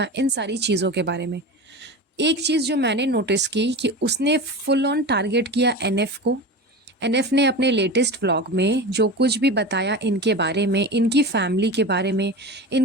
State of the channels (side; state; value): both; normal; correlation 0.28